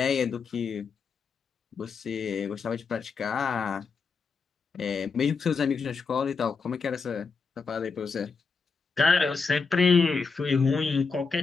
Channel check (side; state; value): right; quieter; 5.0 dB